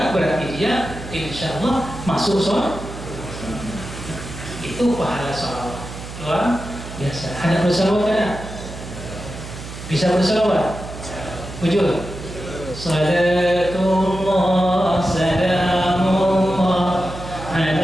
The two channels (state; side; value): noise; right; hum, 11 dB below the sound